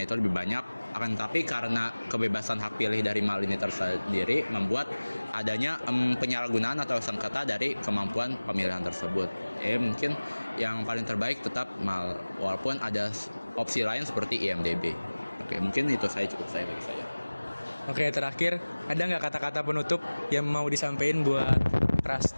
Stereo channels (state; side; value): inverted; both; correlation -1.00